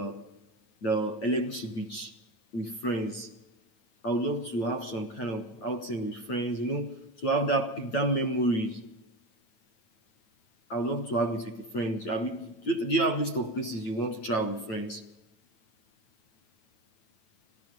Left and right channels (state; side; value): late; right; 9.1 ms